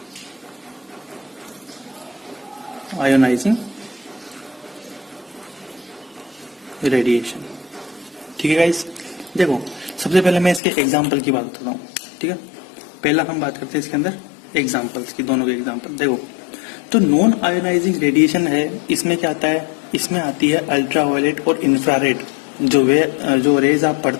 आयोनाइजिंग रेडिएशन। ठीक है गाइस, देखो सबसे पहले मैं इसके एग्जाम्पल की बात बताता हूँ। ठीक है, पहला हम बात करते हैं इसके अंदर एग्जाम्पल्स की, दोनों के एग्जाम्पल। देखो तो नॉन आयोनाइजिंग रेडिएशन है, इसमें क्या आता है, इसमें आती है अल्ट्रावायलेट और इंफ्रारेड जो रेज आप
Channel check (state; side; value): drops out; right; at 10.6 s